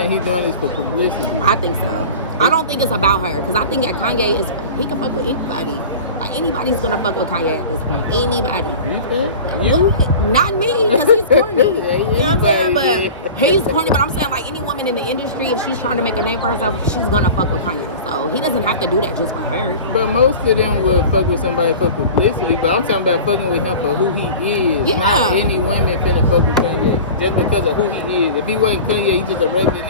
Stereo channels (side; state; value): both; inverted; correlation -0.37